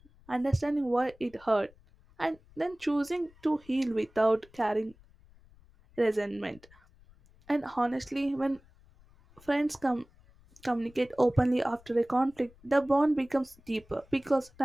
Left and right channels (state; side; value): noise; left; rumble, 27 dB below the sound